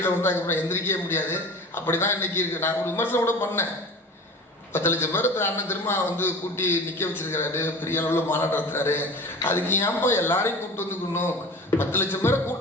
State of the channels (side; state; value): both; normal; correlation 0.37